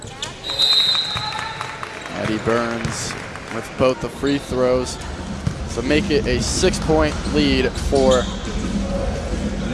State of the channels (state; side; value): identical; both; correlation 1.00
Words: Addie Burns with both the free throws. So make it a 6-point lead for